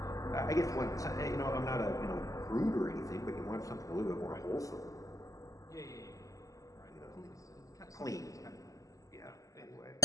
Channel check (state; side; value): late; right; 0.16 ms